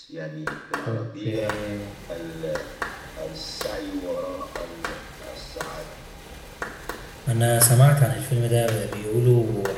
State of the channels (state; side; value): identical; both; correlation 1.00